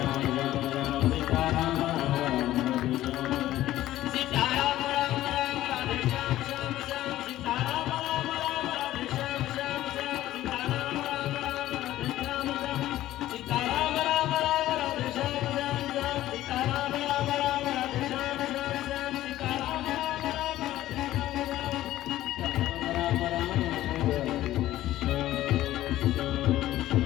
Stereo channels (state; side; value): quieter; right; 14.5 dB